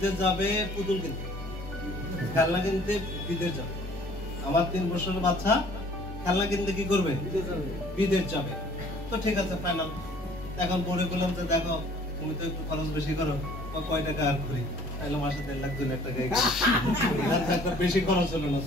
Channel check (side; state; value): both; normal; correlation 0.54